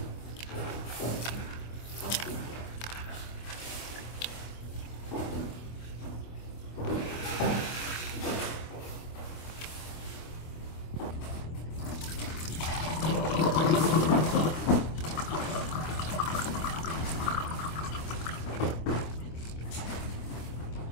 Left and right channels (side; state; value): right; late; 25 ms